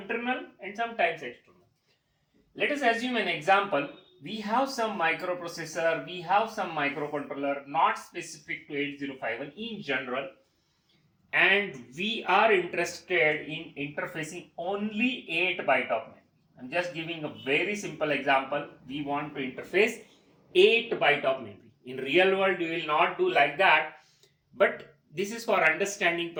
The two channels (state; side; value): identical; both; correlation 1.00